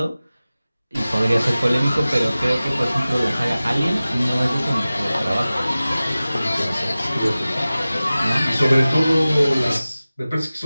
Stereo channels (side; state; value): both; inverted; correlation -0.97